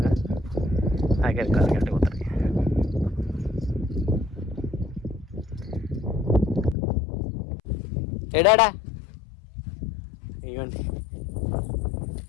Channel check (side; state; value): right; drops out; at 6.8 s